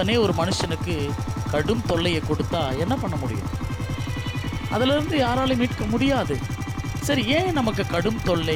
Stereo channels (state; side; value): identical; both; correlation 1.00